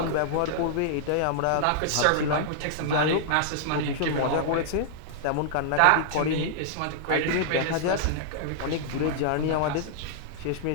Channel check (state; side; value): different; both; correlation -0.01